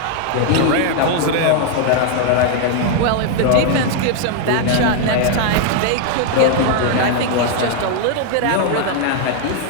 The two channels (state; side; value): different; both; correlation 0.00